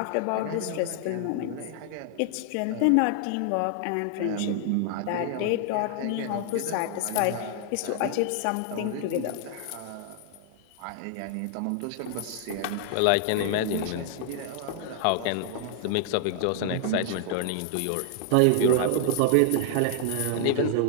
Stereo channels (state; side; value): different; both; correlation 0.00